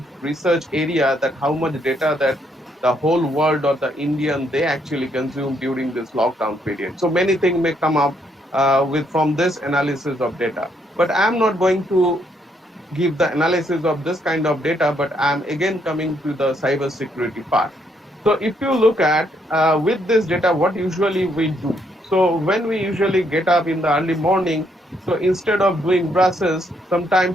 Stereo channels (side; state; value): both; normal; correlation 0.73